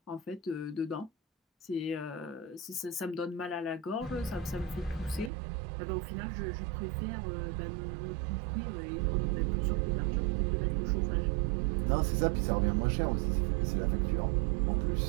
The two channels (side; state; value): left; drops out; at 5.3 s